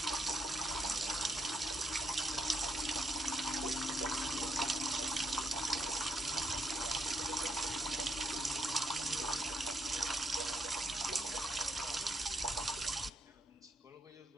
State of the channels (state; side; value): normal; both; correlation 0.77